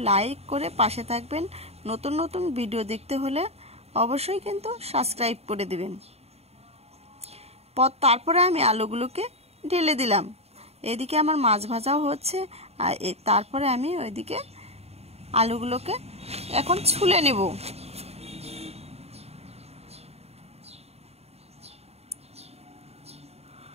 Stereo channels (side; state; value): left; late; 0.30 ms